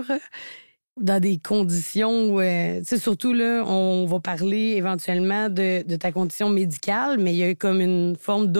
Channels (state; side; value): inverted; both; correlation -1.00